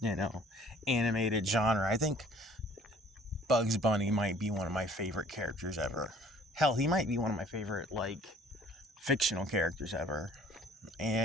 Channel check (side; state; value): both; normal; correlation 0.54